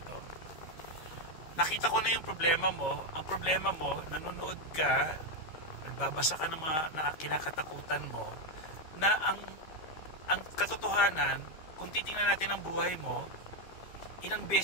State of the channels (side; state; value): right; late; 13 ms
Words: Nakita ko na yung problema mo. Ang problema mo, nanonood ka, nagbabasa ka ng mga kinakatakutan mo, na ang katotohanan, kung titingnan natin ang buhay mo, ilang